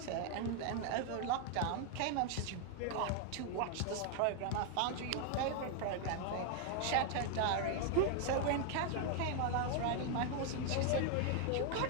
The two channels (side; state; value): both; different; correlation 0.00